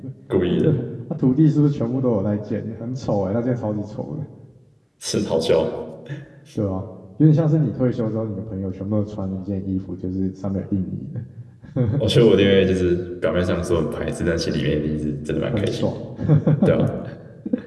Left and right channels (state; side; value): identical; both; correlation 1.00